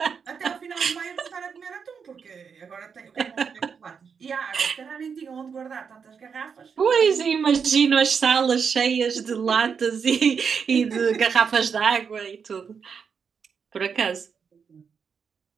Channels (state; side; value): quieter; left; 6.3 dB